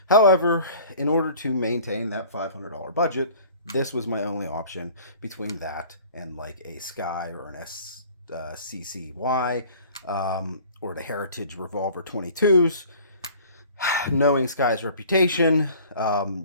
However, in order to maintain that $500 budget, this was my only option between that and like a Sky or an SCCY or the Heritage Revolver 22s. Knowing Sky's reputation,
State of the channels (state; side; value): inverted; both; correlation -0.49